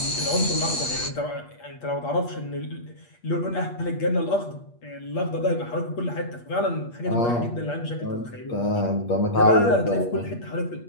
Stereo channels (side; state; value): right; late; 8.5 ms